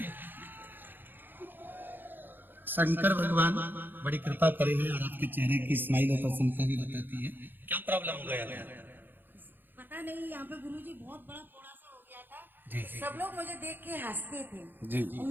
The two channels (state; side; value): late; left; 0.094 ms